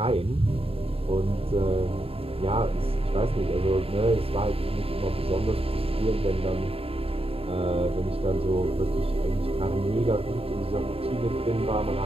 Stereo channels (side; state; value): left; late; 0.28 ms